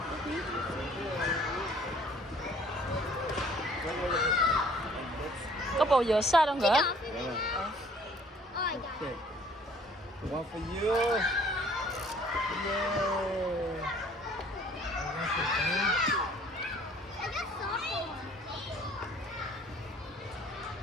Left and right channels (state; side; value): normal; both; correlation 0.56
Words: Có bầu dừa xa đâu nữa. Okay. One for you.